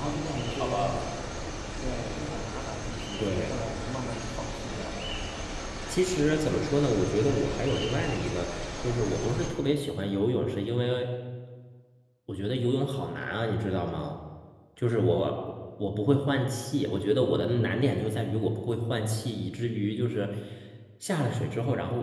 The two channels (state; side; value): identical; both; correlation 1.00